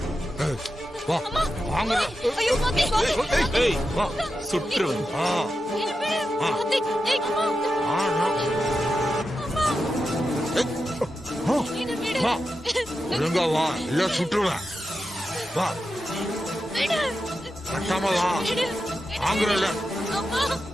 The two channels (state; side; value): normal; both; correlation 0.89